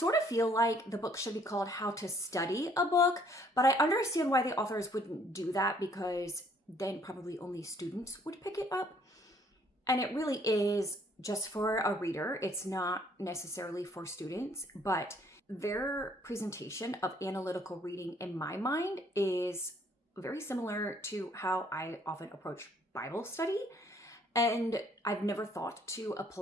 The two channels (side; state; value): both; normal; correlation 0.62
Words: of feel like the book should be called How to Study a Book, but I understand why the authors wouldn't do that, because then probably only students would pick it up. And it really is just for a reader. It's not necessarily for students, but their presentation of analytical reading, in my mind, is very similar to how I often approach Bible study. And I've never thought to